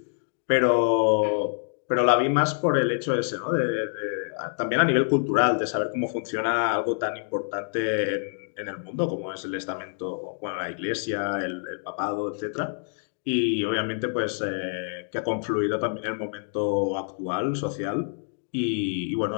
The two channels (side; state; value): right; silent; digital silence